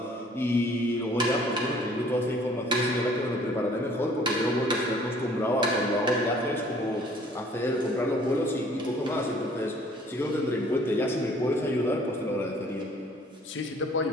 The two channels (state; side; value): normal; both; correlation 0.56